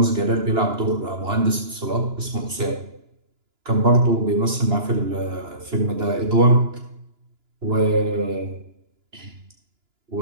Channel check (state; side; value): late; left; 2.9 ms